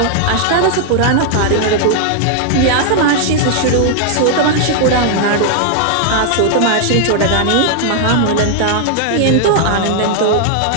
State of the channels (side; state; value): both; different; correlation 0.00